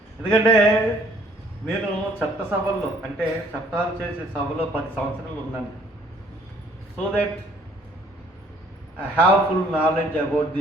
ఎందుకంటే నేను చట్టసభల్లో అంటే చట్టాలు చేసే సభలో 10 సంవత్సరాలు ఉన్నాను. So that I have full knowledge about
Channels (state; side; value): normal; both; correlation 0.60